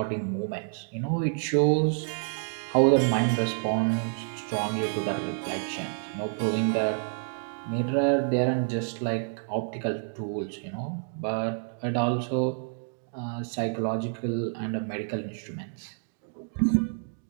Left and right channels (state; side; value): silent; left; 59 dB below the other